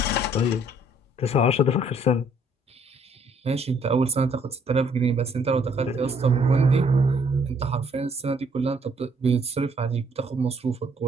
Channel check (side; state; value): both; normal; correlation 0.65